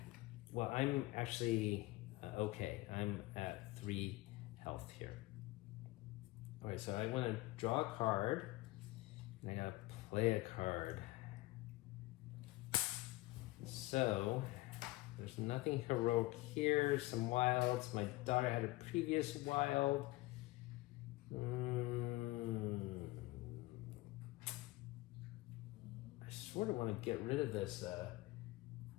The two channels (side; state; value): right; quieter; 20.0 dB